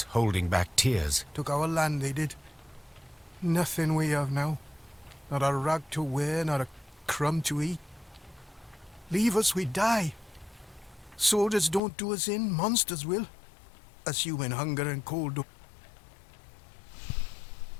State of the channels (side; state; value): right; drops out; at 11.8 s